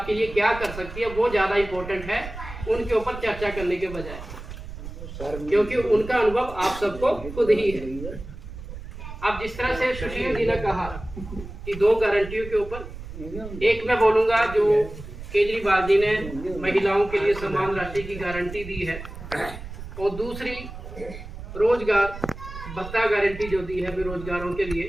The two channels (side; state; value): right; noise; rumble, 11 dB below the sound